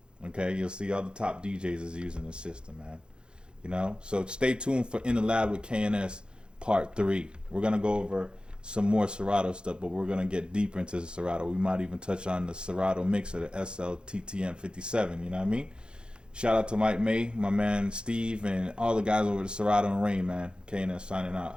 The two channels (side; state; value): left; late; 0.050 ms